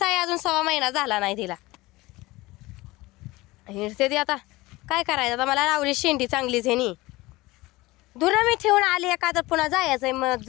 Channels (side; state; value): right; quieter; 20.4 dB